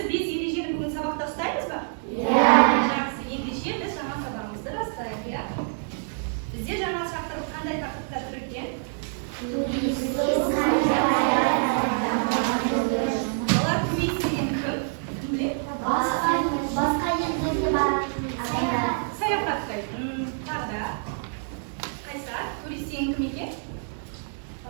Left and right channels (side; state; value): left; silent; 61 dB below the other